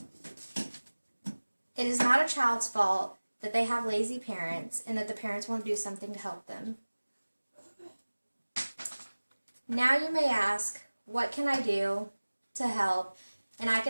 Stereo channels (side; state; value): both; inverted; correlation -1.00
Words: It is not a child's fault that they have lazy parents and that the parents won't do something to help them. Now you may ask, what can I do to help? And I